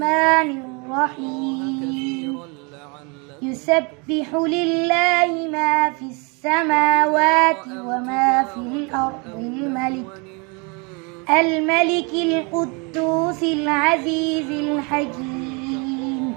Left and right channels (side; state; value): left; quieter; 31.4 dB